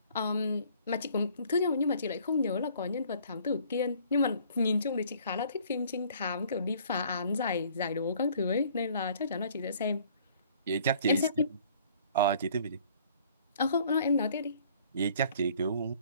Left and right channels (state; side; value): inverted; both; correlation -0.57